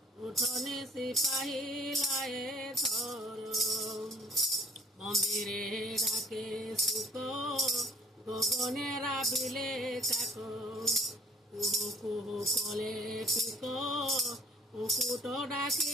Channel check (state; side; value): normal; both; correlation 0.58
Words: উঠনি সিপাহী লায়ে থর মন্দিরে ডাকে সুখ গগনে রাবিলে কাক কুহু কুহু কলে পিক কুকুট